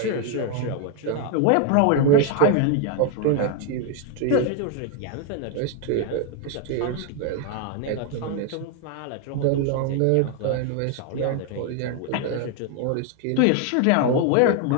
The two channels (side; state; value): both; different; correlation 0.00